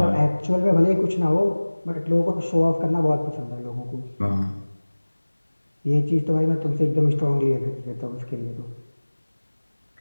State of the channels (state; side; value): inverted; both; correlation -1.00